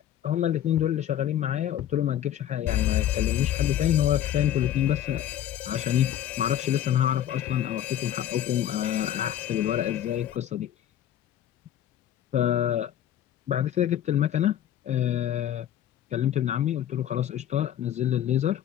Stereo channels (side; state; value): right; quieter; 11.2 dB